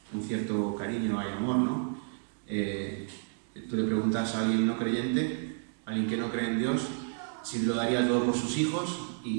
un cierto cariño, hay amor, ¿no? Tú le preguntas a alguien no creyente, a alguien que no cree en Dios, si lo daría todo por sus hijos,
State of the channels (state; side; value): silent; left; 57 dB below the other